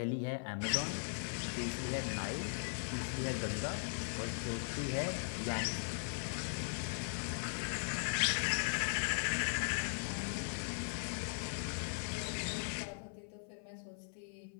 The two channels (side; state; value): right; silent; 52 dB below the other